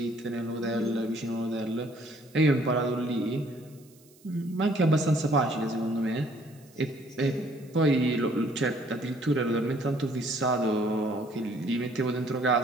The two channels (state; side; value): noise; right; hiss, 28 dB below the sound